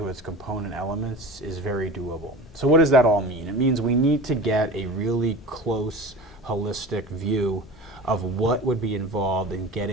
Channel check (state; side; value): normal; both; correlation 0.34